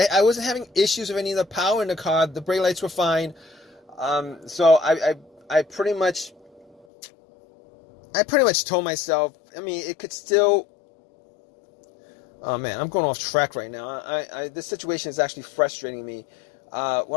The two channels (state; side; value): drops out; right; at 6.9 s